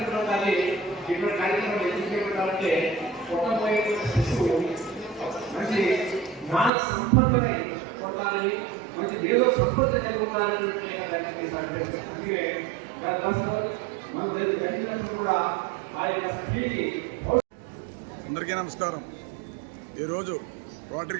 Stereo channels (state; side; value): drops out; left; at 6.7 s